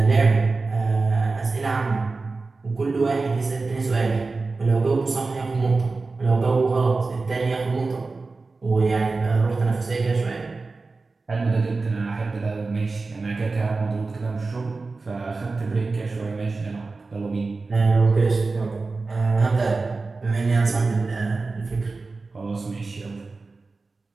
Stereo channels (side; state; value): left; quieter; 3.8 dB